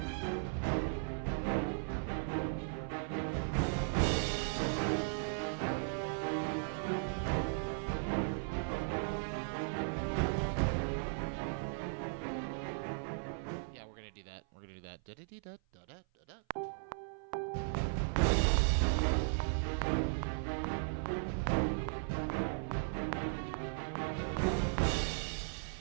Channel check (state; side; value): silent; left; 53 dB below the other